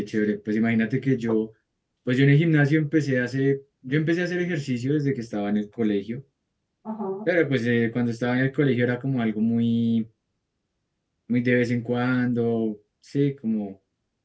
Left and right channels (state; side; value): identical; both; correlation 1.00